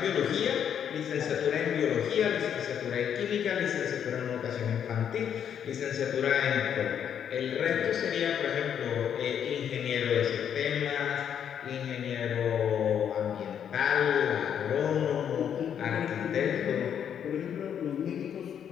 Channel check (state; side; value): quieter; right; 8.7 dB